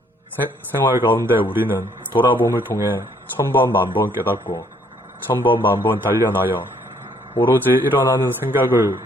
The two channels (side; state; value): both; normal; correlation 0.66